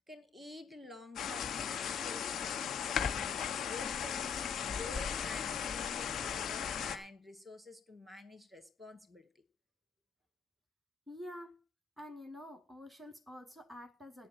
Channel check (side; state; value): right; quieter; 6.8 dB